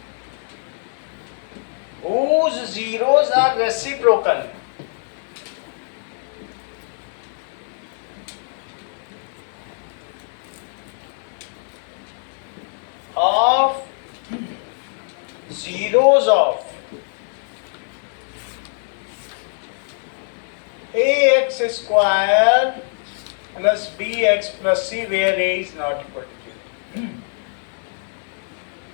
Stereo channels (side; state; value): right; silent; digital silence